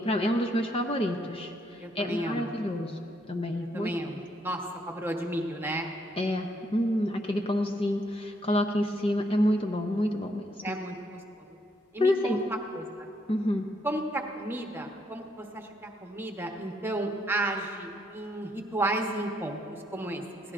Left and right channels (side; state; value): both; normal; correlation 0.73